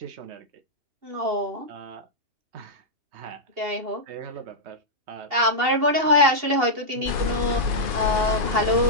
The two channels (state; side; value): late; left; 2.8 ms